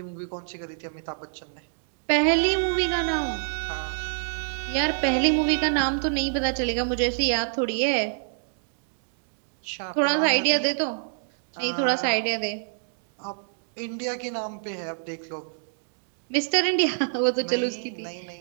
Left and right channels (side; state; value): left; silent; digital silence